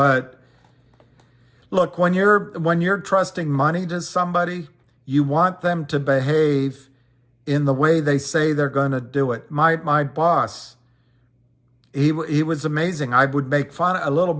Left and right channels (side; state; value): both; identical; correlation 1.00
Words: look, when you're trusting money to somebody, you want them to behave in the way they say they're going to do it. My boss, he was amazing. I would make a little